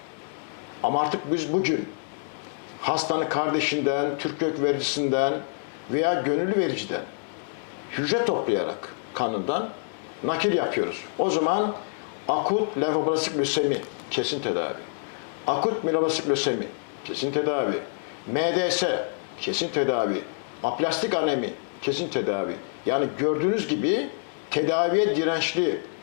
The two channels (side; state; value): right; silent; digital silence